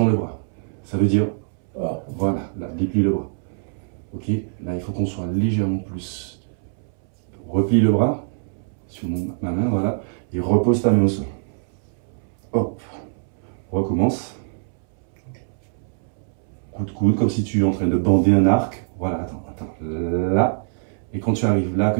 le bras. Ça veut dire, voilà, là, déplie le bras. Ok, là, il faut qu'on soit légèrement plus. Replie le bras sur ma main, voilà. Et repose ta main au sol. Hop. Recommence. Coup de coude, comme si tu es en train de bander un arc. Voilà, attends. Là. Et quand tu arrives là,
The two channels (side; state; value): left; silent; 63 dB below the other